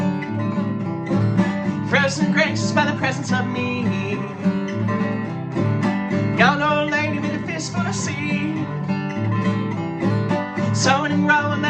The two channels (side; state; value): both; identical; correlation 1.00